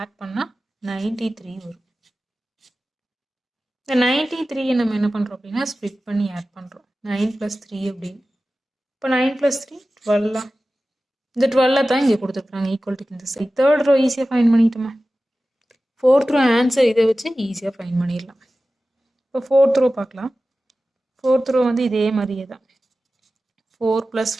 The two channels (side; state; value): both; normal; correlation 0.95